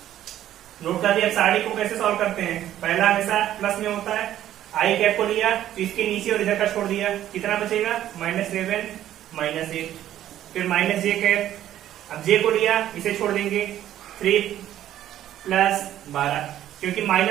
नोट कर दिया। अब साड़ी को कैसे सॉल्व करते हैं, पहला हमेशा प्लस में होता है। आई कैप को लिया तो इसके नीचे और इधर का छोड़ दिया, कितना बचेगा माइनस 7 माइनस 8। फिर माइनस जे कैप, अब जे को लिया इसे छोड़ देंगे 3 प्लस 12, क्योंकि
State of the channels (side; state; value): left; quieter; 12.2 dB